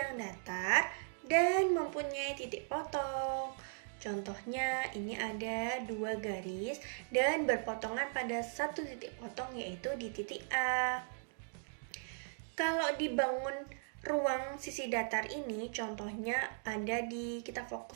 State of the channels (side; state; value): left; silent; digital silence